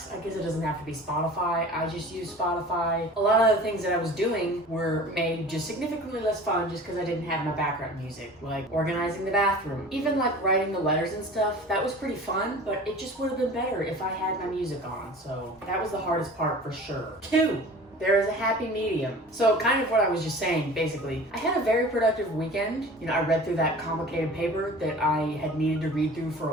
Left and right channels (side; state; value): both; normal; correlation 0.41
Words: I guess it doesn't have to be Spotify. I just use Spotify. A lot of the things that I was doing were made just significantly less fun just because I didn't have my background music, like organizing the bathroom. Even like writing the letters and stuff, that was pretty fun, but it just would have been better if I had my music on. So that was the hardest part for sure. 2. There is a happy medium. So kind of what I was just saying, basically. I had a very productive weekend. You know, I read through that complicated paper that I had needed to read through for